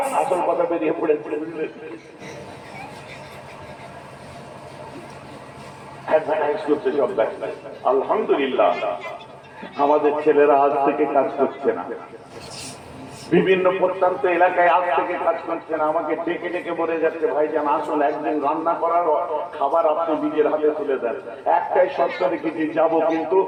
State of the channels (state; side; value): identical; both; correlation 1.00